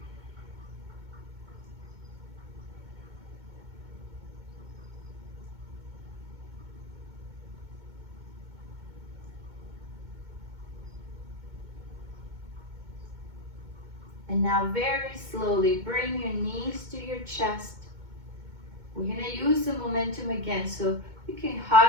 And now very slowly bring your knees to your chest. We're going to use the momentum again, so you can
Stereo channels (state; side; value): late; left; 2.2 ms